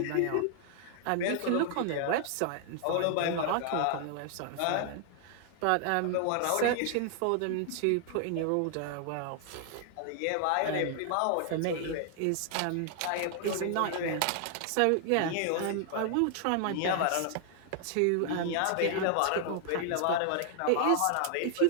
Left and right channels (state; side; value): different; both; correlation 0.00